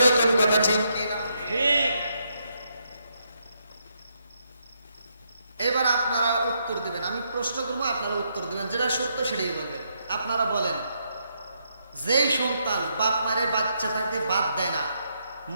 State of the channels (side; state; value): both; inverted; correlation -0.77